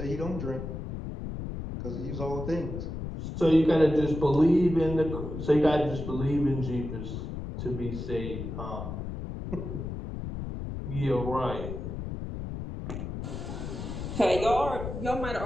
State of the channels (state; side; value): noise; left; rumble, 6 dB below the sound